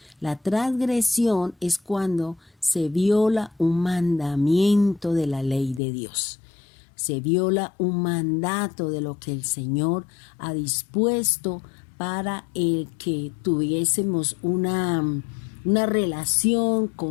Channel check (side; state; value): right; drops out; at 5.8 s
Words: La transgresión es cuando se viola un mandamiento de la ley de Dios. Se viola un mandato de lo que el Señor ha dispuesto para el que tuviésemos una relación